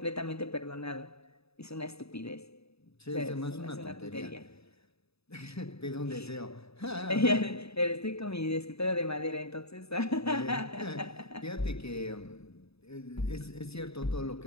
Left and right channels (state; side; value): late; right; 0.78 ms